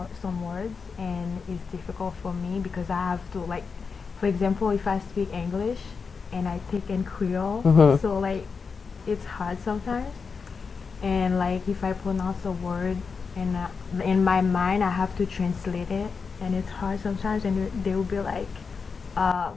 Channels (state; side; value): quieter; right; 5.3 dB